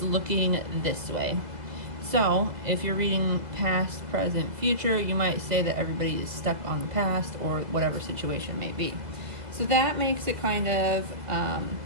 looking this way. So if you're reading past, present, future, you might say that everybody is stuck on the past or whatever situation may be. So that makes it kind of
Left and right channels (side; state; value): left; late; 2.2 ms